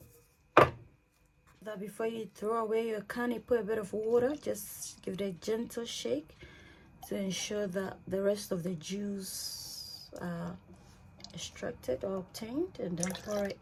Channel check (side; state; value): both; identical; correlation 1.00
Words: That before you throw away your can, you put a bit of water. Just give it a gentle shake to ensure that the rest of the juice are extracted or obtained, and then pour it